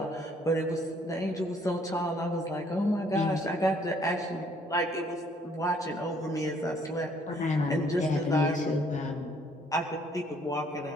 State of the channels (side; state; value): both; normal; correlation 0.63